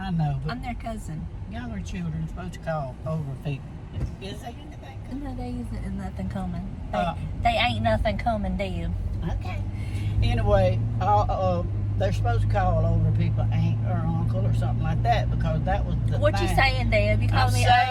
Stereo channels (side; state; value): both; identical; correlation 1.00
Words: know, but I'm their cousin. younger children supposed to call over people. Is there anything? No, there isn't nothing coming. Uh, They ain't nothing coming, Deb. Okay. Anyway, they're supposed to call over people, aunt or uncle or something like that, because that was the What thing. you saying, Deb? You call I'm me